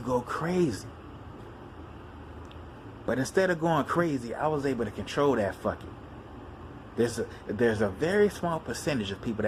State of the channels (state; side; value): identical; both; correlation 1.00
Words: go crazy. But instead of going crazy, I was able to control that fuck it. There's a very small percentage of people